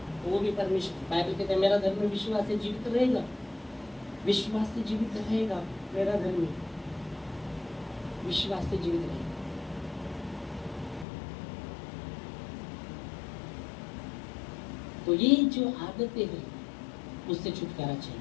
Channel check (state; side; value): drops out; right; at 11.1 s